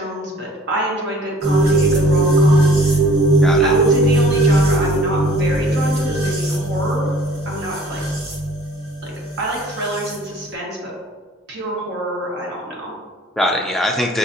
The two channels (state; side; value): normal; both; correlation 0.52